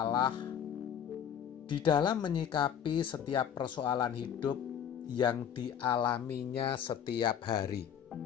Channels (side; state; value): right; quieter; 8.7 dB